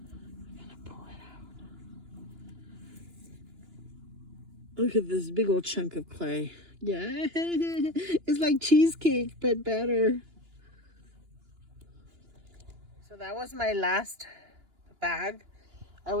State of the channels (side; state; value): left; late; 2.9 ms